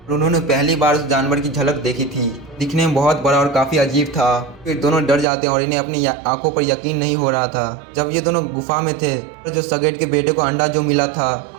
और उन्होंने पहली बार उस जानवर की झलक देखी थी। दिखने में बहुत बड़ा और काफी अजीब था। फिर दोनों डर जाते हैं और इन्हें अपनी आंखों पर यकीन नहीं हो रहा था। जब ये दोनों गुफा में थे तो जो सैगेट के बेटे को अंडा जो मिला था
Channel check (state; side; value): drops out; left; at 5.2 s